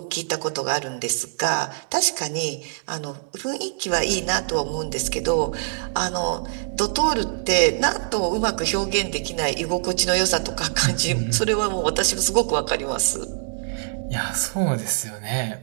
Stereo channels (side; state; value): left; silent; digital silence